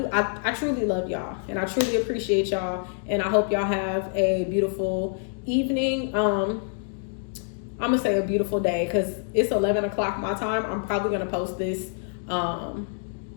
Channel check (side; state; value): right; silent; digital silence